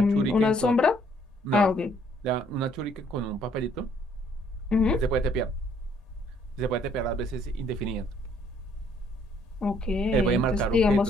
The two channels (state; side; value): normal; both; correlation 0.65